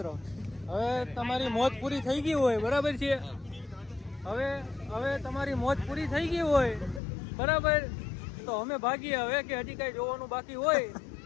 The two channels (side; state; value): right; drops out; at 7.0 s